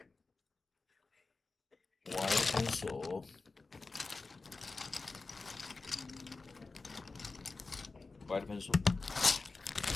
White pencil. White pencil.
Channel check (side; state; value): right; quieter; 3.8 dB